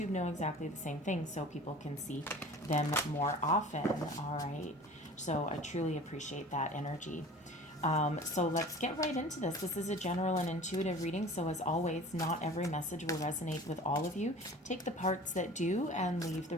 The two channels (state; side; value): normal; both; correlation 0.42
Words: know exactly the same thing so people can see them more often. All right, so I truly appreciate that energy. So let's get right into this. This is a general and intuitive reading, so as always, not every message will resonate with all of you. Take the parts that do and leave the